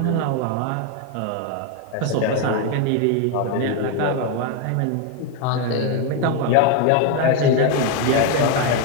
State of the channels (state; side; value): different; both; correlation 0.01